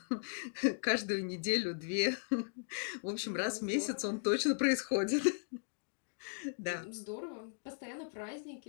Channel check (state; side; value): silent; right; digital silence